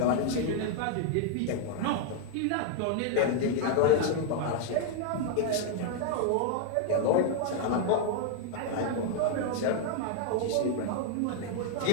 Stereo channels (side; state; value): both; different; correlation 0.00